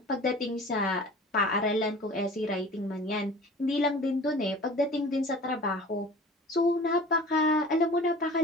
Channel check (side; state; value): both; normal; correlation 0.42